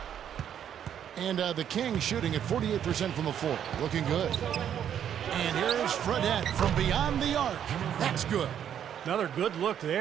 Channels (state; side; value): quieter; left; 9.4 dB